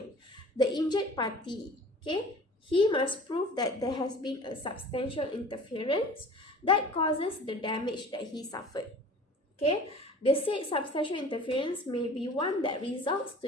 the injured party, okay, he must prove that there has been a substantial interference that causes the damage that he suffered. Okay, the said substantial interference may be one that results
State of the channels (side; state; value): both; normal; correlation 0.44